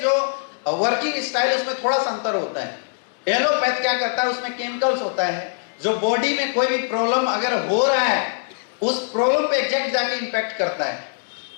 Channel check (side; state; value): right; silent; digital silence